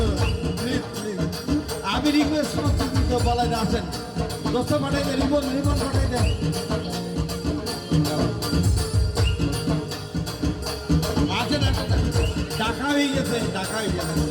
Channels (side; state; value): both; identical; correlation 1.00